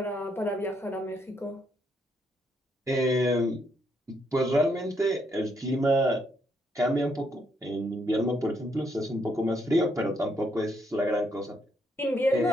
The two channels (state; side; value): normal; both; correlation 0.74